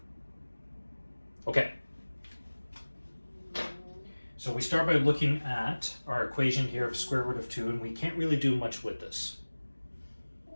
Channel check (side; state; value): both; inverted; correlation -1.00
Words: Okay. So we start by looking at our equation here of square root of 2, and we can't really do much with this.